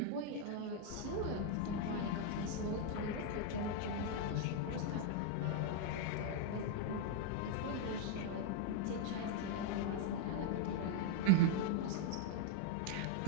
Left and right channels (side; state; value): both; different; correlation 0.00